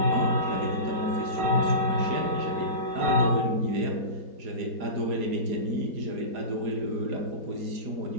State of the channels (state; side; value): late; left; 4.9 ms